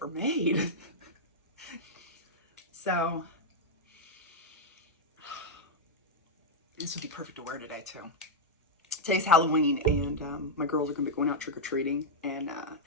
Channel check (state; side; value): normal; both; correlation -0.03